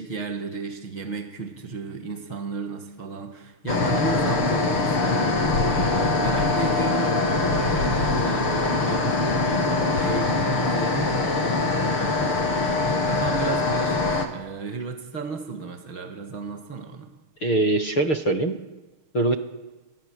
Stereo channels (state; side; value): late; right; 6.7 ms